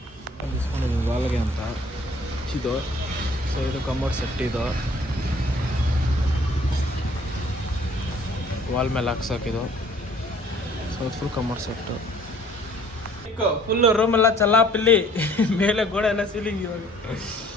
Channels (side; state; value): both; normal; correlation 0.56